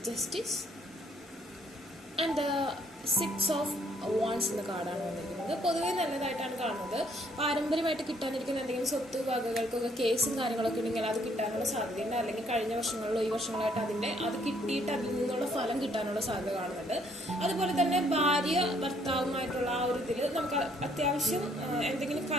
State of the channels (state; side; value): normal; both; correlation 0.66